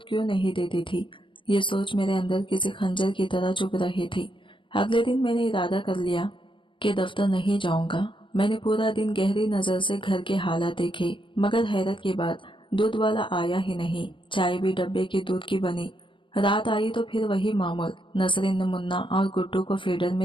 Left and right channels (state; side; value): late; right; 0.24 ms